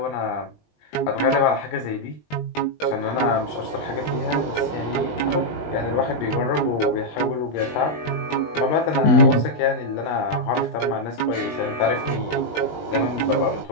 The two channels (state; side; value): late; right; 20 ms